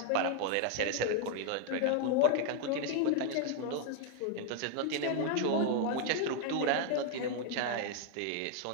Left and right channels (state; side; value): different; both; correlation 0.00